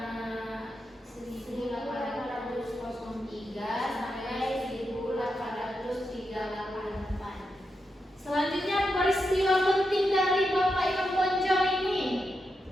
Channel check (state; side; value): normal; both; correlation 0.86